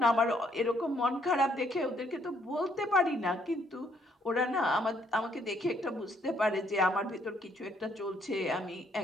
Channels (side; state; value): both; normal; correlation 0.69